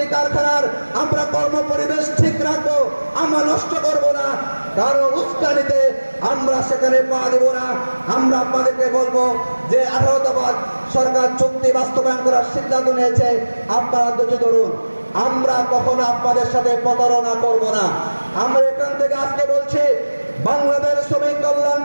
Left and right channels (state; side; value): inverted; both; correlation -1.00